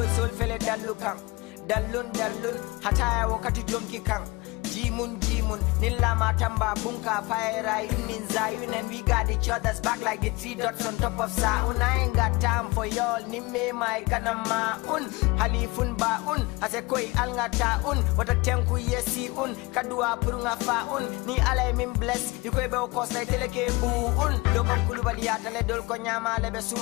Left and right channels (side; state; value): right; quieter; 23.9 dB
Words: sol fele dallun hataya wakati jonki kan jimun nilla matamba bunka fire yunin zayun, and we got each other's back like the 3 dots on top of saun. I ain't got time for y'all, nimme my kanama halifun baun ase koi alngata wata tenku yesi kadua purunga faun ni alay min bless yukoy be ko say teleke bu dogon kulubali atale dol ko nyama lebe